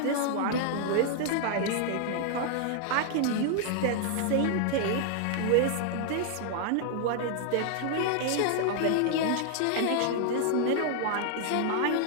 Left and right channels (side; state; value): both; different; correlation 0.00